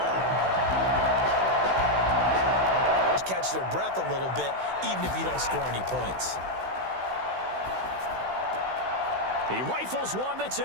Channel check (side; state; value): left; late; 16 ms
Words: Catch their breath a little bit, even if you don't score any points. He rifles one that's